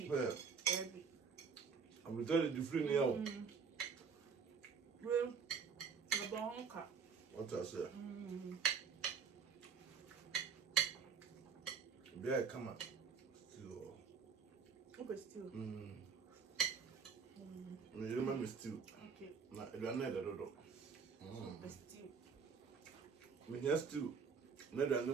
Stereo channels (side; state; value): left; quieter; 5.8 dB